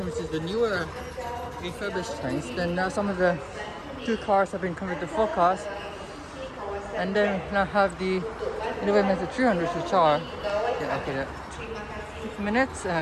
which is the newer refurbished trains. Then now some of the 2 cars have been converted to 4 cars. And then we now have the Innovia Metro 300s, which are 6 minutes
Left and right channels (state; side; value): identical; both; correlation 1.00